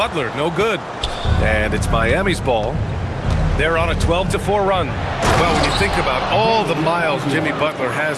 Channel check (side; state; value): both; identical; correlation 1.00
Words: no good. And it's Miami's ball. They're on a 12-4 run. Well, when you think about all the miles Jimmy Butler